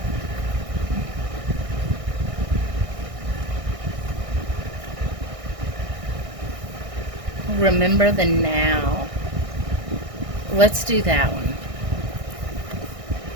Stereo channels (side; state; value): left; late; 1.6 ms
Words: Remember the now. Let's do that one.